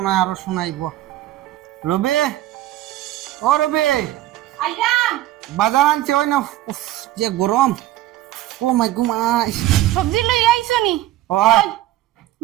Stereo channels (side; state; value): left; quieter; 14.5 dB